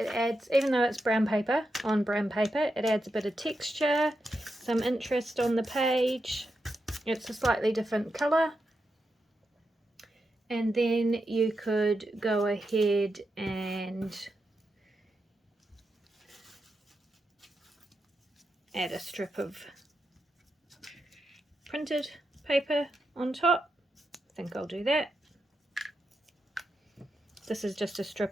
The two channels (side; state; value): both; normal; correlation 0.87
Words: adds, even though it's brown paper, on brown paper, it adds a bit of texture, some interest on the page. It's a slightly different colour. And then you could go ahead and add a strip of printed paper on top. I think I'll do that. This is just a